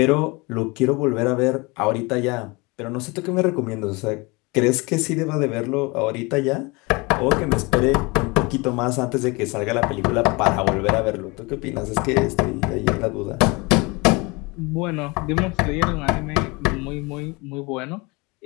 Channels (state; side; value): quieter; right; 26.2 dB